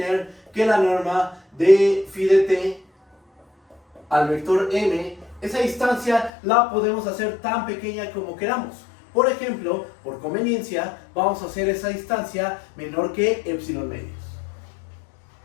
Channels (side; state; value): right; drops out; at 6.3 s